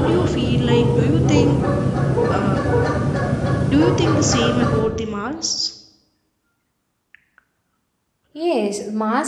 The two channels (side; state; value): both; identical; correlation 1.00